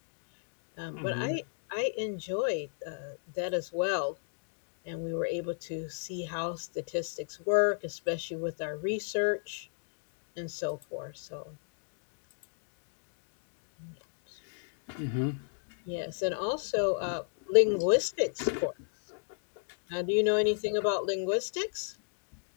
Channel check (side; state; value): right; silent; digital silence